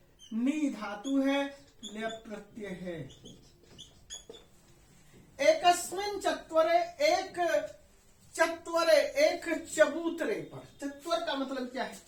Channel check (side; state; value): both; identical; correlation 1.00